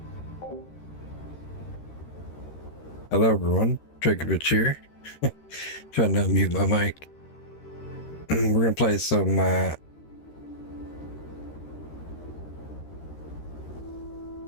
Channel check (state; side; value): late; right; 13 ms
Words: everyone, Drakoviche here. Trying to mute my mic. We're gonna play some